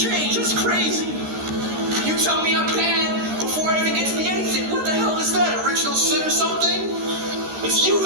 That's crazy. You tell me I'm bad before I even get to the anything. What the hell is that? Original sin or something? It's you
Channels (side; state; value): left; late; 13 ms